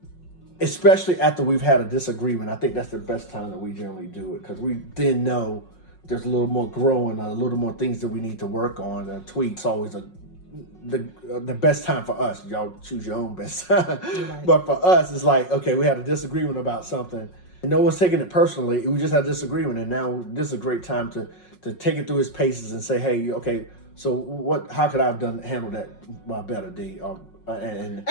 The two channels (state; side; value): late; right; 5.5 ms